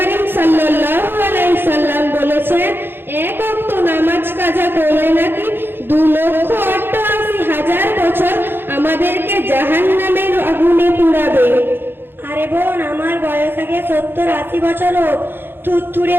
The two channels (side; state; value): left; late; 0.10 ms